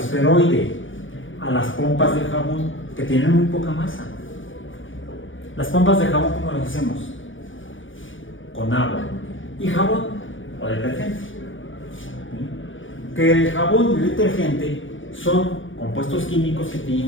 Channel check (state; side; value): late; right; 0.57 ms